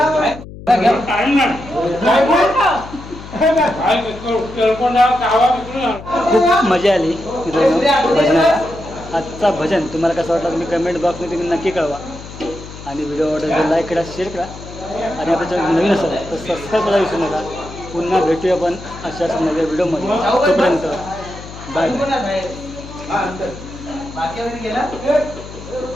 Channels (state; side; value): noise; left; hum, 14 dB below the sound